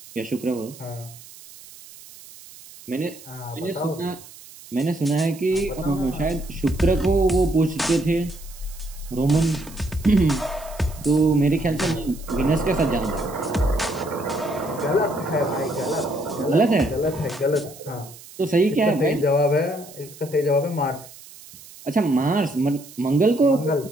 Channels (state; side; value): noise; right; hiss, 19 dB below the sound